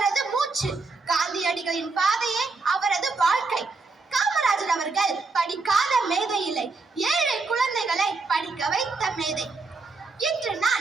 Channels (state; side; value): quieter; left; 3.9 dB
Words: மூச்சு. காந்தியடிகளின் பாதையே அவரது வாழ்க்கை. காமராஜர் அவர்கள் படிக்காத மேதை இல்லை, ஏழை குழந்தைகளை படிக்க வைத்த மேதை. இன்று